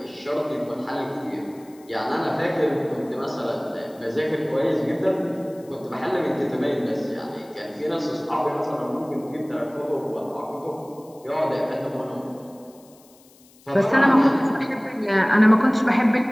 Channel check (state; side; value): noise; left; hiss, 28 dB below the sound